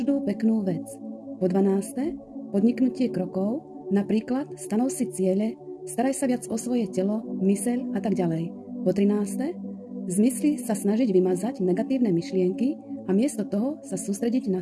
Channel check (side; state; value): both; identical; correlation 1.00